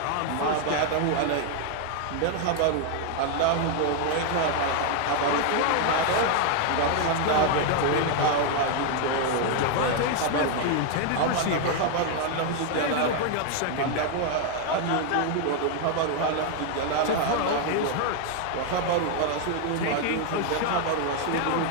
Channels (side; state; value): both; different; correlation 0.00